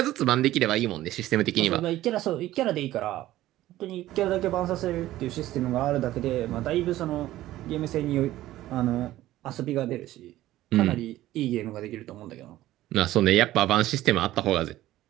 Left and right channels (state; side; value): quieter; left; 15.1 dB